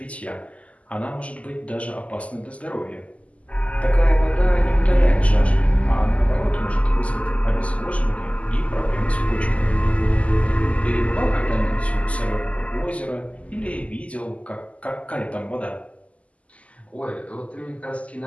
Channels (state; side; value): late; right; 0.066 ms